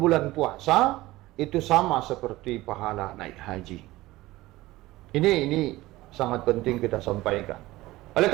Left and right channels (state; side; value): quieter; left; 18.2 dB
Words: puasa itu sama seperti pahala naik haji. Ini sangat penting kita sampaikan. Oleh